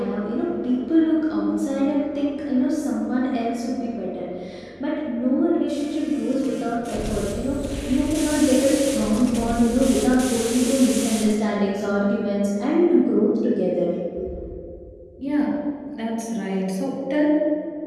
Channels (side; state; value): both; identical; correlation 1.00